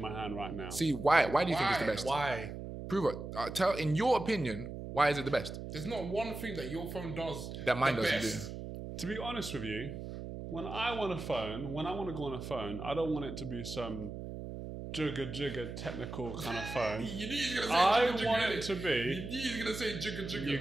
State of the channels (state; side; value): noise; right; hum, 8 dB below the sound